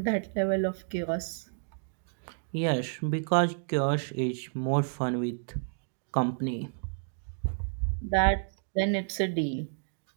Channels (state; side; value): silent; left; digital silence